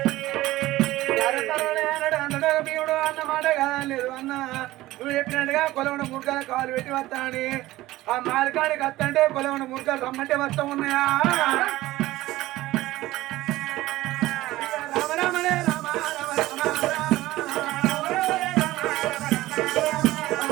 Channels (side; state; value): left; quieter; 17.0 dB